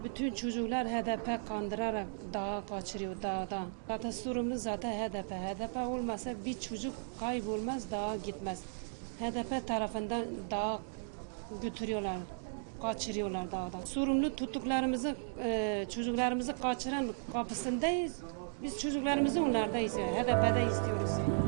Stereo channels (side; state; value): left; silent; digital silence